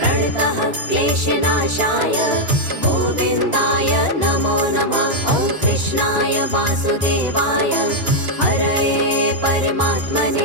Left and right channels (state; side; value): late; left; 2.9 ms